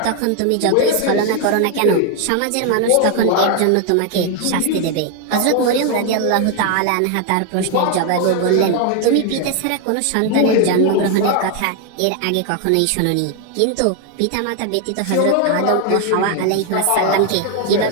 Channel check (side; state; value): both; different; correlation 0.01